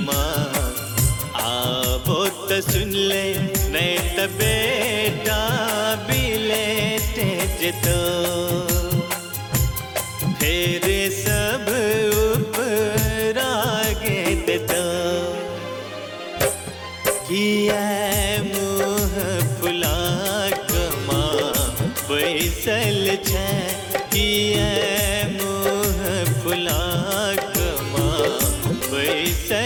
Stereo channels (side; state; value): both; identical; correlation 1.00